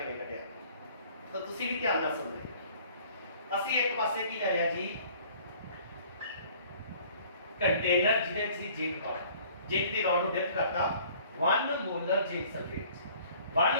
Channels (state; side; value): inverted; both; correlation -0.53